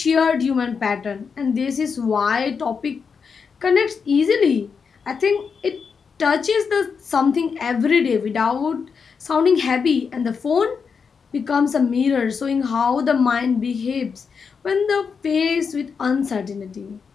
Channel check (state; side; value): quieter; right; 5.8 dB